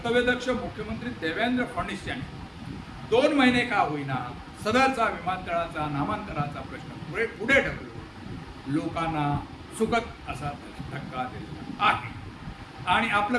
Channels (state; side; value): identical; both; correlation 1.00